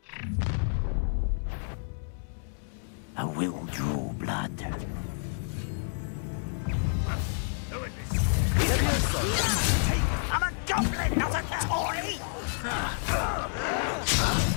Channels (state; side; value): silent; right; digital silence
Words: I will draw blood. I'm a goblin, not a toy!